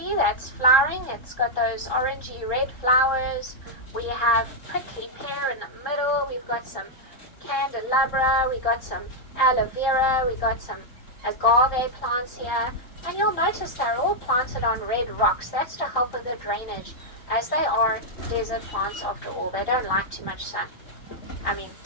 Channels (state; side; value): late; right; 3.7 ms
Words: that's flowering. It's got those orangey red flowers. We have prickly pear in the middle. We've got some candelabra. We got some aloe vera. We got some agave plants here. And you'll notice they're all planted on red rocks. That's to help with the drainage, as they are desert plants after all. They don't like too much sun.